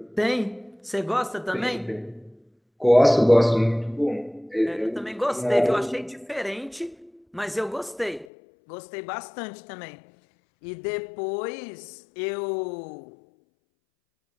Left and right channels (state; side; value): drops out; right; at 8.2 s